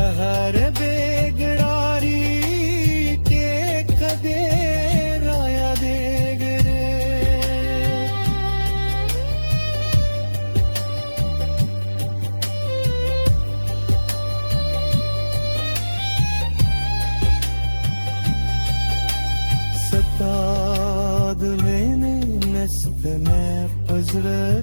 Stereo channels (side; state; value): both; inverted; correlation -1.00